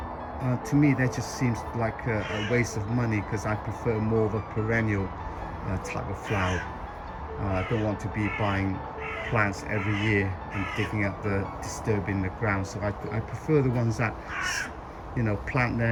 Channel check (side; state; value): both; identical; correlation 1.00